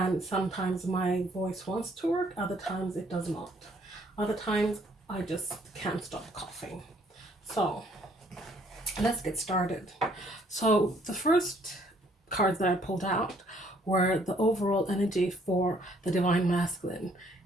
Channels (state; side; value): normal; both; correlation 0.64